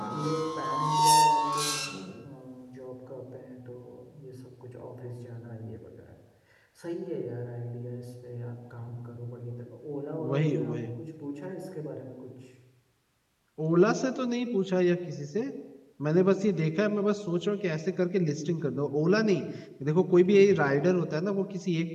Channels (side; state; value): both; identical; correlation 1.00